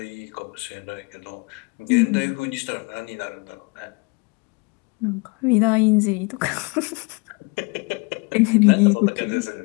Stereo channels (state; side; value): quieter; right; 29.9 dB